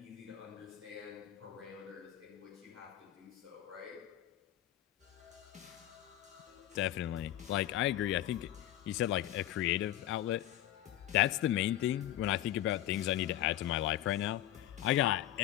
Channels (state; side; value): quieter; right; 13.2 dB